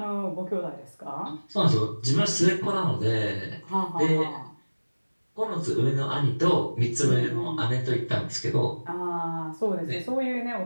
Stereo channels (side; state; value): both; inverted; correlation -1.00